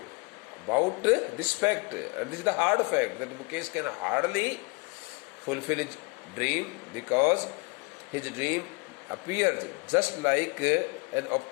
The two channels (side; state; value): right; quieter; 30.0 dB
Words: about this fact, and this is the hard fact that Mukesh can hardly fulfill his dream because his dream appears just like an